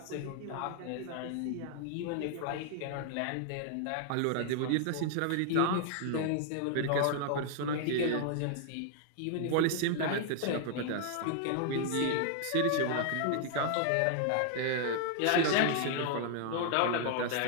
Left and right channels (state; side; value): different; both; correlation 0.00